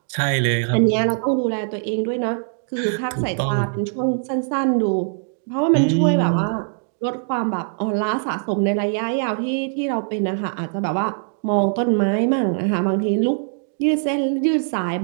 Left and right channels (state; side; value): silent; left; digital silence